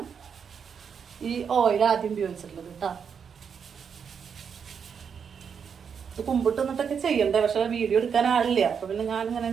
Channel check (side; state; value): left; quieter; 6.9 dB